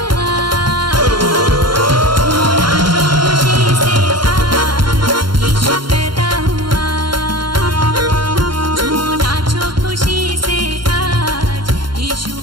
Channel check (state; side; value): late; left; 0.73 ms